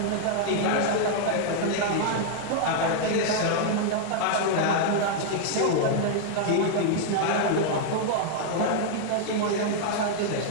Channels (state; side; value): different; both; correlation -0.01